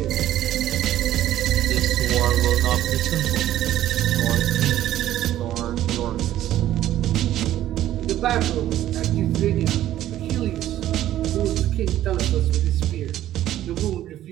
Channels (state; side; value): quieter; left; 13.0 dB